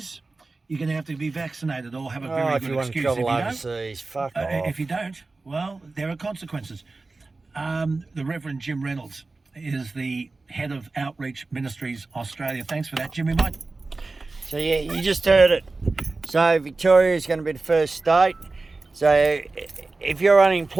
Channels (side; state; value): left; quieter; 3.6 dB